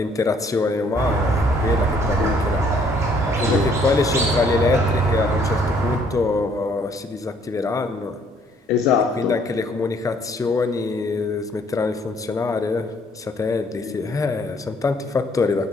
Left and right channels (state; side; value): normal; both; correlation 0.64